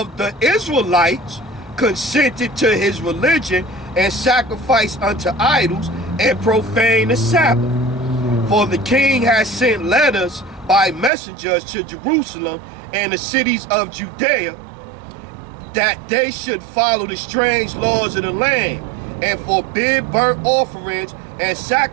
the Israelites consented to his religion and sacrificed unto idols and profaned the Sabbath. For the king has sent letters by messengers to Jerusalem and the cities of Judea that they should follow the strange laws of the land and forbid burnt offerings and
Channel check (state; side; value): drops out; left; at 11.1 s